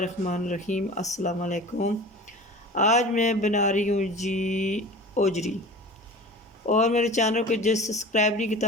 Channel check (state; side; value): normal; both; correlation 0.37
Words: अस्सलाम वालेकुम। आज मैं बना रही हूँ जी ओजरी। और मेरे चैनल को जो सब्सक्राइब नहीं